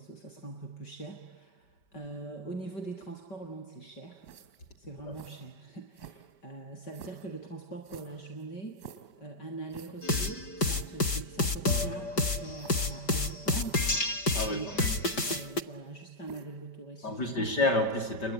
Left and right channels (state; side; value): late; right; 5.1 ms